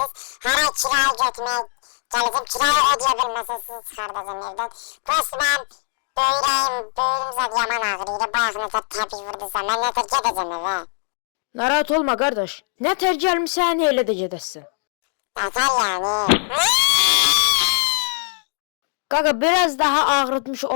Hər ay kiraya götürməyə gələcəm, kiraya ödeyə bilməsəz sizi çıxardacam evdən. Prosto mən böyrüm zəd yaman ağrıydı, bayaq nətər təbii vurdusa, mən nətər gedəcəm evə. Narahat olma qardaş, nətər gəlmişsən, elə də gedəsən. Nətər yəni? Qaqa, biraz daha ağrıtmış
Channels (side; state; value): right; silent; 65 dB below the other